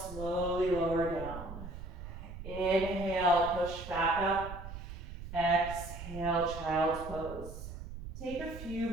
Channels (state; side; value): noise; right; rumble, 10 dB below the sound